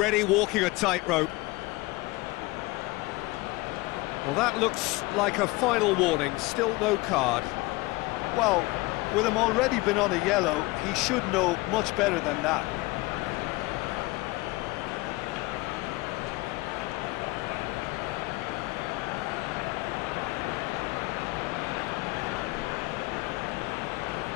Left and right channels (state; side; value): quieter; right; 22.2 dB